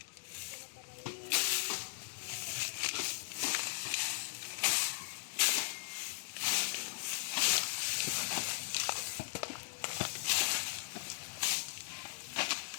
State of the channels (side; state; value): right; silent; digital silence